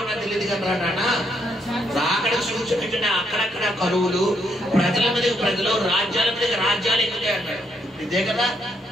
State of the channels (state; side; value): normal; both; correlation 0.75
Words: నాకు తెలియదు కదా రానా. రాకడ సూచన అక్కడక్కడ కరువులు, ప్రజల మీద ప్రజలు, రాజ్యాల మీద రాజ్యాలు ఎక్కుతాయి అన్నాడు. ఇదే కదా.